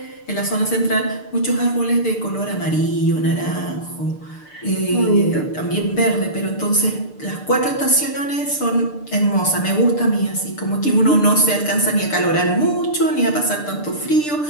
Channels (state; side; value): late; right; 6.7 ms